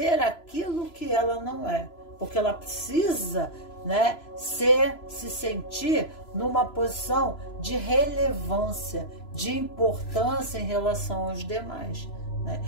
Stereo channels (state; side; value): late; right; 3.0 ms